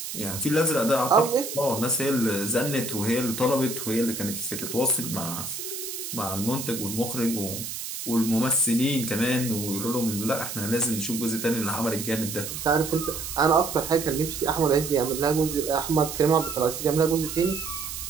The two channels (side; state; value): right; noise; hiss, 7 dB below the sound